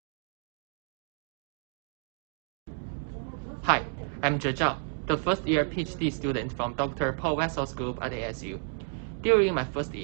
Hi, I'm Je Zhao, the first-year PhD student from Dr. Paul Wessel's group at ASU. During my first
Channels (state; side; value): silent; left; 57 dB below the other